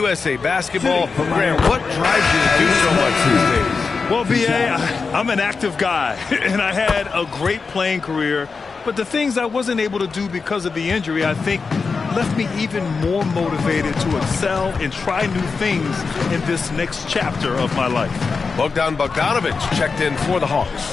Basketball, Grant, what drives you to do so much these days? Well, B.A., I'm an active guy, and I had a great playing career. But the things I wasn't able to do because of the injury, I think, left me even more motivated to excel and try new things in this next chapter of my life. Bogdan Bogdanovich checked in for the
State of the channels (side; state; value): right; quieter; 4.8 dB